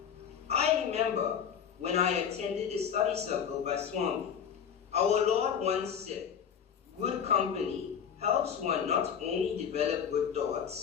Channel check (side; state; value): right; quieter; 7.8 dB